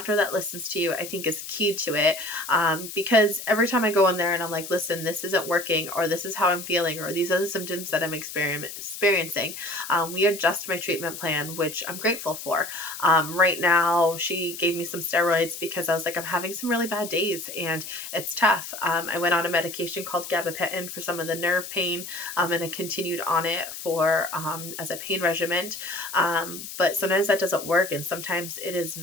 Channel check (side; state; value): left; noise; hiss, 10 dB below the sound